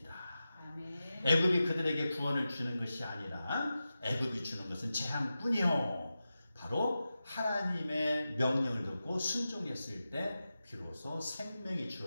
아멘. 애굽이 그들에게 구원을 주는 것이 아니라 애굽이 주는 것은 재앙뿐이요. 바로 하나님의 명령을 듣고 순종했을 때 비로소 생명이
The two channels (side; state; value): both; inverted; correlation -0.93